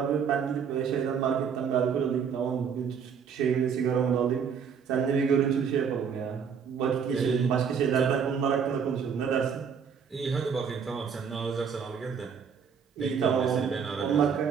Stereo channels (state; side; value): quieter; left; 6.8 dB